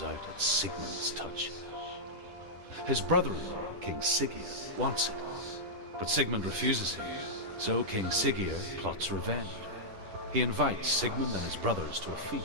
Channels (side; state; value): left; late; 10 ms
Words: out at Sigmund's touch. His brother-in-law, King Siggeir, wants it, but Sigmund refuses him, so King Siggeir plots revenge. He invites Sigmund and his brothers to a